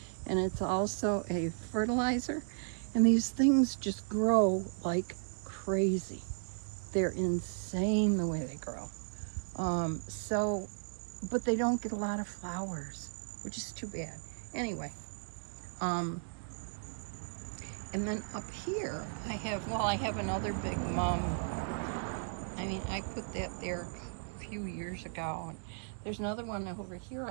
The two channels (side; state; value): left; silent; digital silence